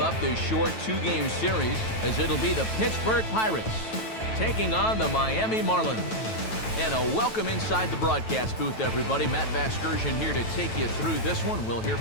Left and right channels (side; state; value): right; late; 9.1 ms